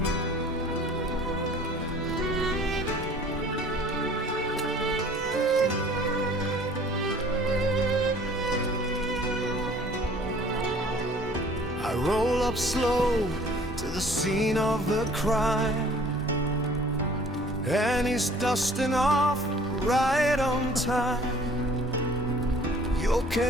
I roll up slow to the scene of the crime, and he's dusting off right on time. You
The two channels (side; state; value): both; normal; correlation 0.52